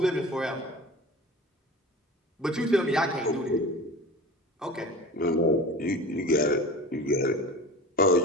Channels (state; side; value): normal; both; correlation 0.36